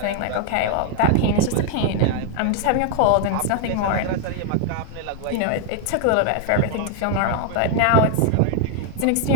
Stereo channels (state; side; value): different; both; correlation 0.00